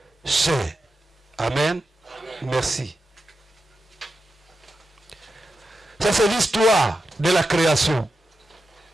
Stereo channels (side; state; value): both; normal; correlation 0.89